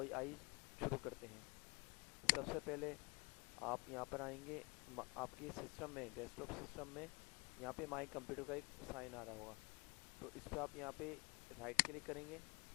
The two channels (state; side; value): quieter; right; 29.0 dB